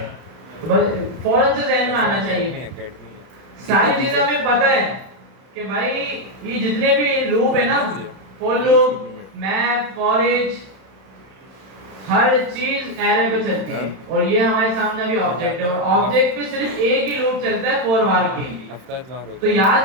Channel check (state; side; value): late; left; 31 ms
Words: तो बस फौरन से ध्यान में आना चाहिए। सारी चीजें हमें पता है कि भाई ये जितने भी लूप है ना, for loop, map, for each, हर चीज एरे पे चलती है। और ये हमारे सामने अभी ऑब्जेक्ट है, और ऑब्जेक्ट पे सिर्फ एक ही लूप चलता है, फॉर बार की। तो